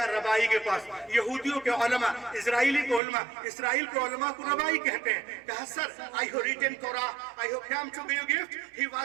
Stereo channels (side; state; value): left; drops out; at 3.0 s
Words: रबाई के पास, यहूदियों के उलमा, इजराइली के उलमा, इसराइल के उलमा को रबाई कहते हैं। कहा sir I have written Torah, I have come to give gift, he